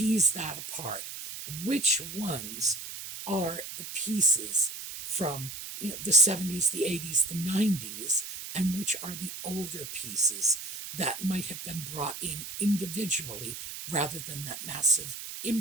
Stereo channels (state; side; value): noise; right; hiss, 9 dB below the sound